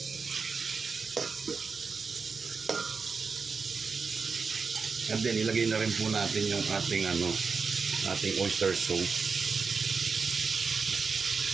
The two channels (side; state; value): left; quieter; 5.0 dB